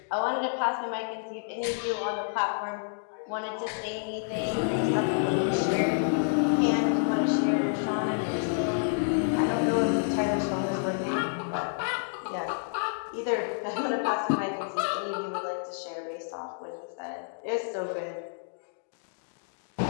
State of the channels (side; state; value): right; silent; digital silence